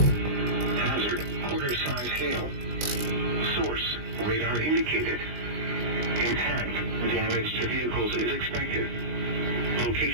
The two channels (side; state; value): left; late; 20 ms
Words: Hazard, quarter-size hail. Source, radar indicated. Intact, damage to vehicles is expected.